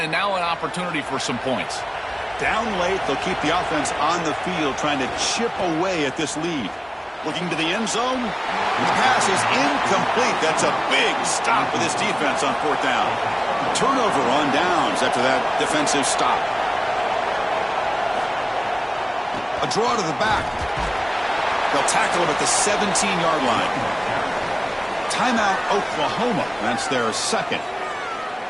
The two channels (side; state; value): both; identical; correlation 1.00